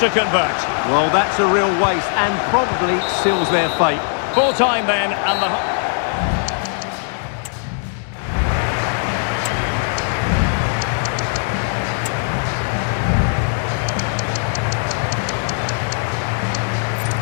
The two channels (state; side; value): silent; right; 66 dB below the other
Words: convert. Well, that's a real waste and probably seals their fate. Full time then, and the...